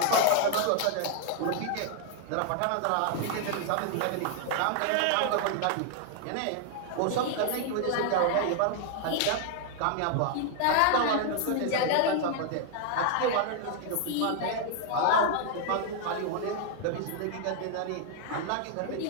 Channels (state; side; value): different; both; correlation 0.00